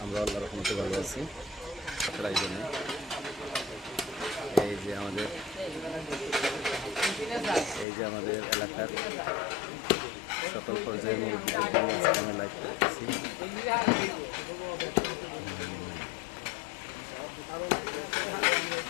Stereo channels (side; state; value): right; drops out; at 7.9 s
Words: আমরা আল্লাহর রহমতে ভালো আছি। তাই জন্য এই যে আমাদের এলাকার সকল পর্যায়ের মুরব্বীদের জন্য আজকে আমি লাইভ করতেছি।